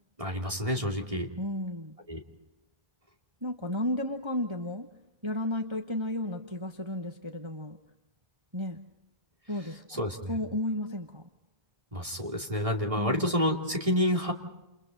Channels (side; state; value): left; late; 1.6 ms